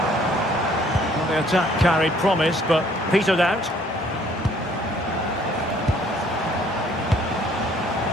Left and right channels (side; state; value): both; normal; correlation 0.60